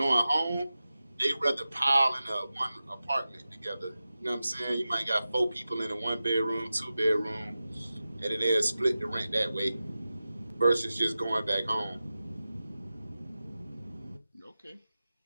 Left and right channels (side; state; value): both; inverted; correlation -0.94